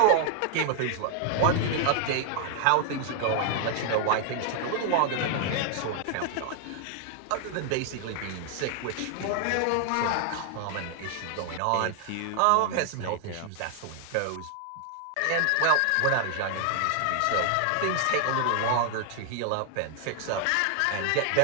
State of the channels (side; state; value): both; different; correlation 0.00